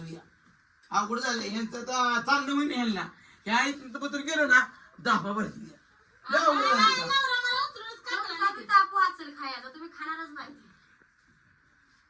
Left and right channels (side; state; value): both; identical; correlation 1.00